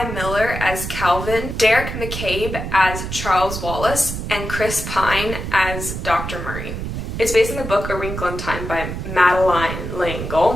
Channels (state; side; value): noise; right; rumble, 6 dB below the sound